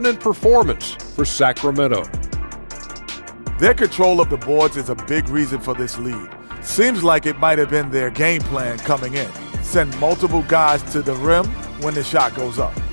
performance for Sacramento. Their control of the boards is a big reason for this lead. Seems like it might have been their game plan coming in. Send multiple guys to the rim when the shot goes up.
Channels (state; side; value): inverted; both; correlation -1.00